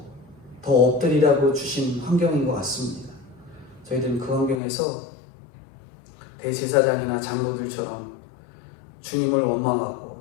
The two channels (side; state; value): right; drops out; at 4.6 s